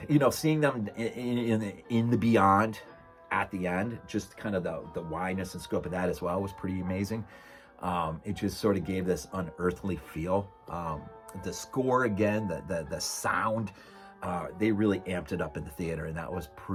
Seeing them in the beyond at the end, just kind of the wideness and scope of that as well was pretty amazing. It just sort of gave this unearthly feel. The score again, the sound, they really amped it up in the theater, and that was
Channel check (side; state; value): both; identical; correlation 1.00